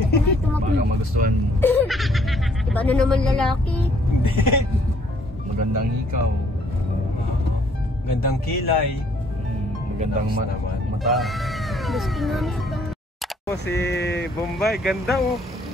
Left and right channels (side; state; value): both; normal; correlation 0.63